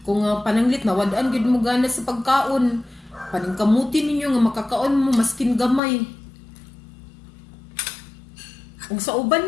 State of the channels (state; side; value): drops out; right; at 5.8 s